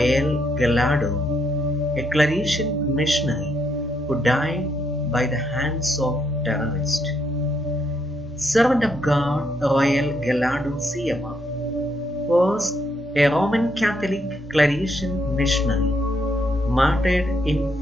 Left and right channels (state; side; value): normal; both; correlation 0.75